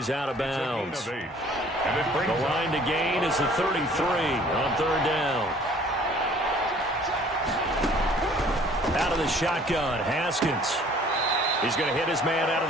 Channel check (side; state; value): both; normal; correlation 0.54